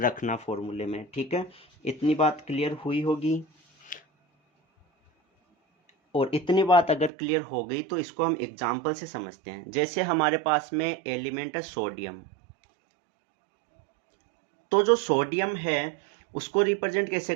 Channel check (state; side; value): drops out; left; at 7.1 s